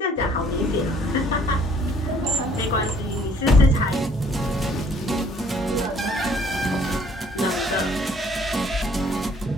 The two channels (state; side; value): normal; both; correlation 0.60